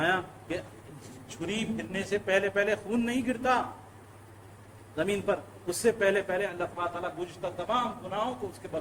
کہ چھری پھرنے سے پہلے خون نہیں گرتا زمین پر، اس سے پہلے اللہ تعالیٰ گزشتہ تمام گناہوں کو اس کے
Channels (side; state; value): both; identical; correlation 1.00